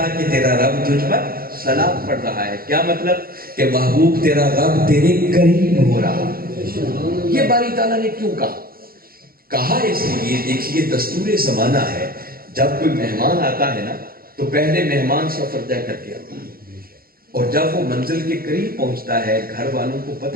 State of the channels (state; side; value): late; left; 0.43 ms